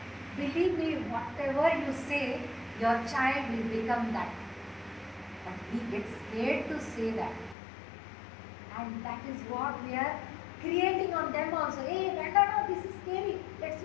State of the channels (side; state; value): right; drops out; at 7.6 s